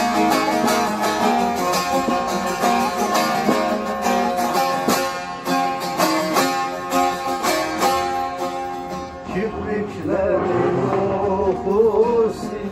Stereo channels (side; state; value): both; identical; correlation 1.00